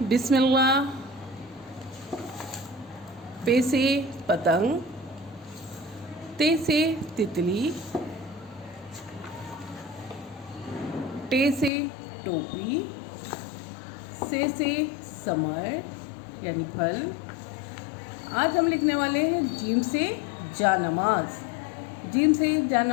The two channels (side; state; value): right; drops out; at 11.7 s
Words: बिस्मिल्लाह, पे से पतंग, ते से तितली, टे से टोपी, से समर यानी फल। आज हम लिखने वाले हैं जीम से जानमाज, जीम से